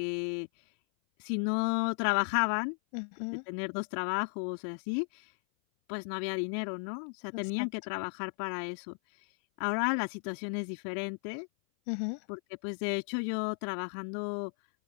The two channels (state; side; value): silent; right; 55 dB below the other